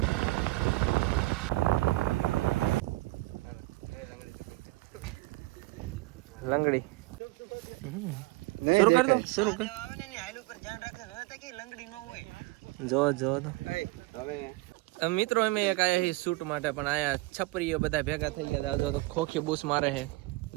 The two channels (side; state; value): left; quieter; 21.6 dB